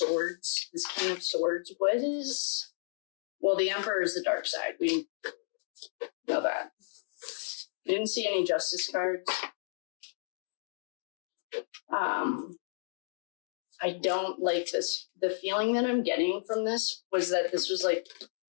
this King of Swords. What is... Well, the Emperor is the dark side. We know that. I didn't see any Justice cards. I don't like this. The feeling that I'm getting from this was that this was like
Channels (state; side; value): silent; right; digital silence